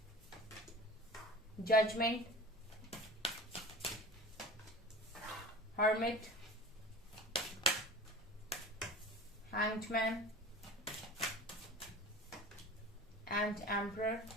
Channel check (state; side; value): normal; both; correlation 0.37